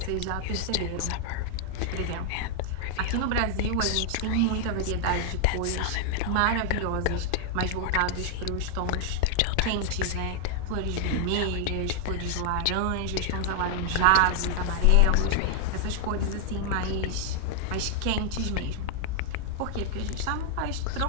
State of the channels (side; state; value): both; different; correlation 0.00